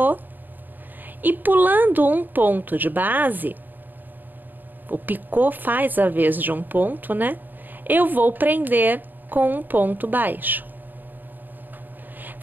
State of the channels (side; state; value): left; late; 0.089 ms